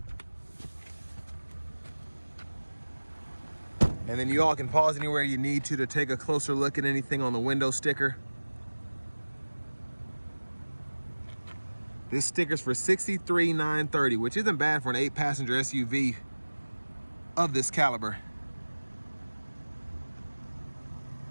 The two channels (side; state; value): both; inverted; correlation -1.00